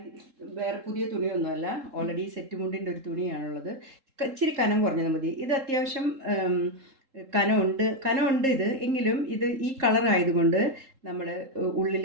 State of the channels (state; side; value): late; left; 3.7 ms